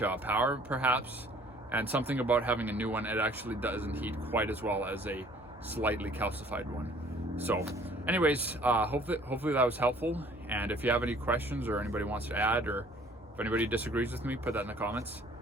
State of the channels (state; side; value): normal; both; correlation 0.55